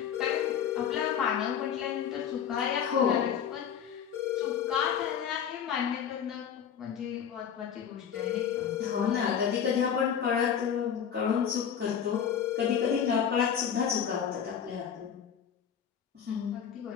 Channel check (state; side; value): quieter; right; 8.2 dB